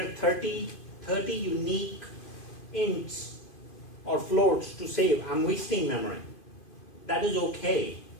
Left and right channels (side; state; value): right; late; 2.5 ms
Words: 30 unique ints or floats to save, I'm wasting memory. That is okay.